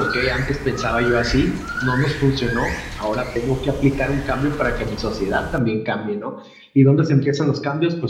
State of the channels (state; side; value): identical; both; correlation 1.00